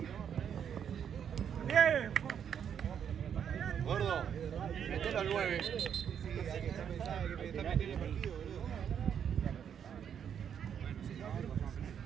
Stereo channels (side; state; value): left; quieter; 8.3 dB